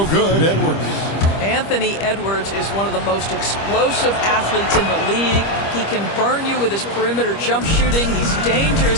good, Edwards. Anthony Edwards is one of the most explosive athletes in the league. He can burn you with his perimeter jump shooting. He's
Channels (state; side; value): late; right; 25 ms